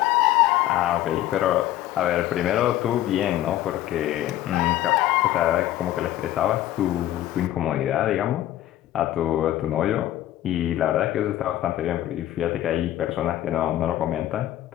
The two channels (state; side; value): quieter; right; 13.5 dB